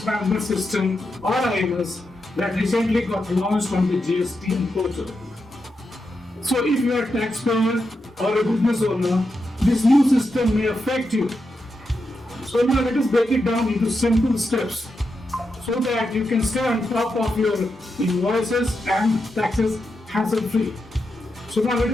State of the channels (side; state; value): both; normal; correlation 0.86